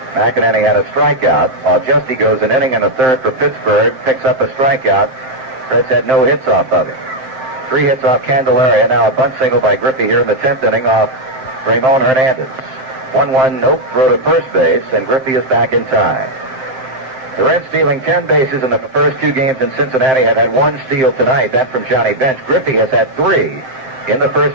McInerney had a strikeout, while Justy goes an inning and a 1/3 for Pittsburgh, picks up a strikeout. Reds had no hits off of him. 3 hits off Candeleria. Now a bunt single by Griffey here in the 10th inning off Ramon Hernandez. 1-1 nope throw to first base, and Griffey is back in time. The Reds stealing 10 bases in the first 2 games in Cincinnati have had 1 steal tonight. That from Johnny Bench. Griffey has had 3 in the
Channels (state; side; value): late; left; 7.7 ms